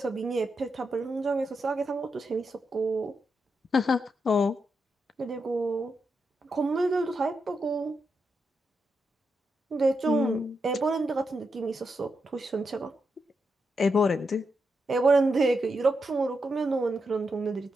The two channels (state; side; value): normal; both; correlation 0.85